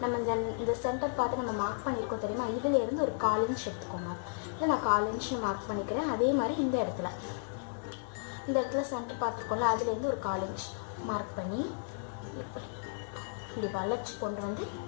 நம்ம இந்த சென்டர் பார்த்து நம்ம மார்க் பண்ணியிருக்கோம் தெரியுமா, இதுலேருந்து ஒரு 1/4 இன்ச் எடுத்துக்கோங்க. இல்லை நான் 1/4 இன்ச் மார்க் பண்ணிக்கிறேன். அதே மாதிரி இந்த இடத்துல சென்டர் பார்த்துருக்கோம்ல, அதுலேருந்து ஒரு 1/4 இன்ச் மார்க் பண்ணி இப்படி வளைச்சி கொண்டு வந்து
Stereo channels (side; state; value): right; silent; digital silence